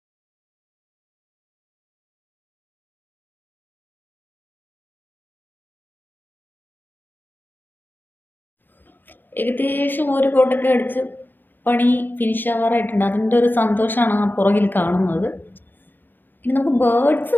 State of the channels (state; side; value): late; right; 0.092 ms